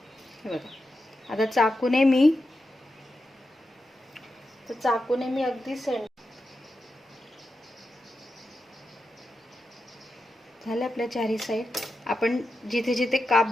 हे बघा, आता चाकूने मी अगदी झाले आपल्या चारही साईड. आपण जिथे जिथे काप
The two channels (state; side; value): normal; both; correlation 0.89